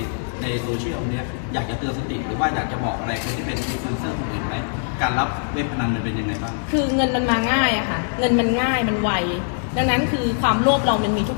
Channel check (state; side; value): silent; right; digital silence